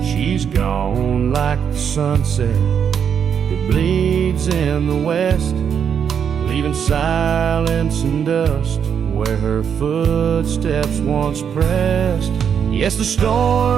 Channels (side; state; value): left; quieter; 7.7 dB